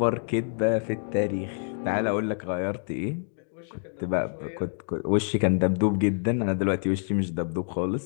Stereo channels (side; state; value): right; silent; 59 dB below the other